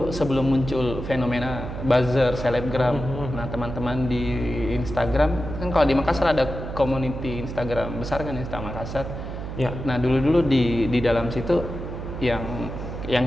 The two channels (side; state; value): right; noise; hum, 7 dB below the sound